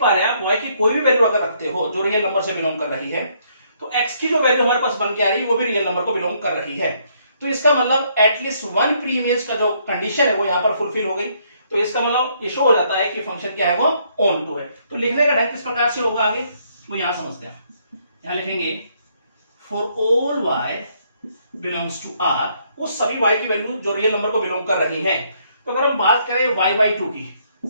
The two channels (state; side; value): inverted; both; correlation -0.70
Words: रहे हैं, आप y की कोई भी वैल्यू अगर रखते हो जो रियल नंबर से बिलोंग कर रही है, तो x की जो वैल्यू हमारे पास बन के आ रही है वो भी रियल नंबर को बिलोंग कर रही है। तो इसका मतलब एटलीस्ट वन प्री इमेज का जो कंडीशन है वो यहाँ पर फुलफिल हो गई। तो इसका मतलब ये शो हो जाता है कि फंक्शन क्या है, वो ऑन टू है। तो लिखने का ढंग किस प्रकार से होगा आगे वो यहाँ समझते हैं। यहाँ लिखेंगे for all y belongs to r, उस सभी y की वैल्यू जो रियल नंबर को बिलोंग कर रही है। तो अगर हम बात करें y बाई 2 की